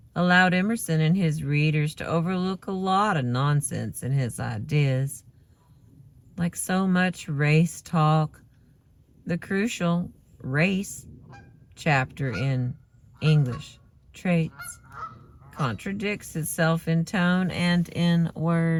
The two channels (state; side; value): identical; both; correlation 1.00